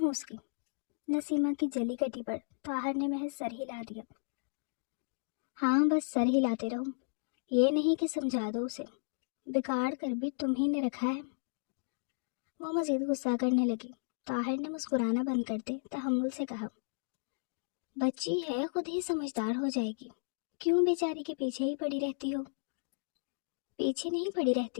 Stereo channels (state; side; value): silent; right; digital silence